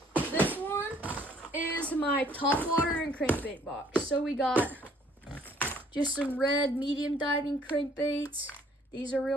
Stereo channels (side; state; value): both; normal; correlation 0.60